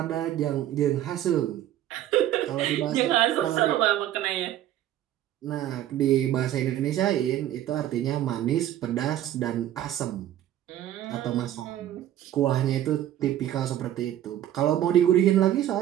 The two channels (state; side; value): quieter; left; 12.3 dB